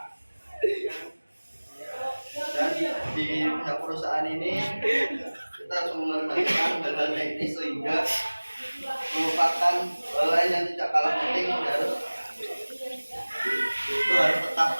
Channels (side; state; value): both; inverted; correlation -1.00